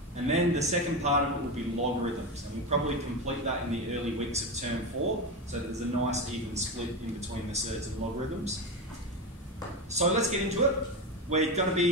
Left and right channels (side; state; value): both; normal; correlation 0.17